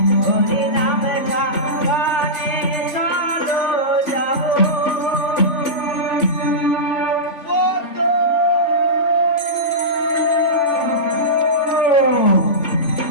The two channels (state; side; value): late; right; 3.4 ms